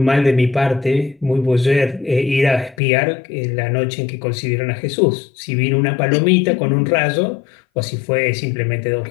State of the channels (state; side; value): drops out; right; at 2.8 s